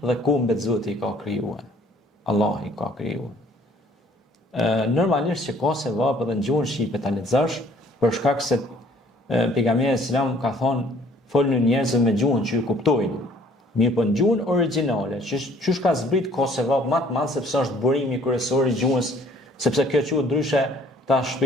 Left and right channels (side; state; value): both; normal; correlation 0.57